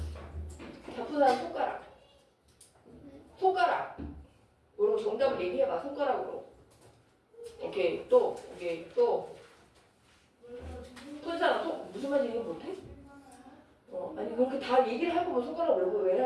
다 푼 사람 손가락. 손가락으로 정답을 얘기해봐. 손가락으로. 오케이. 또. 오케이. 또. 푼 사람 무슨 말인지 얘기 못해? 아니 그렇게 다 얘기를 할 거면 손가락을 왜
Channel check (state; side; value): identical; both; correlation 1.00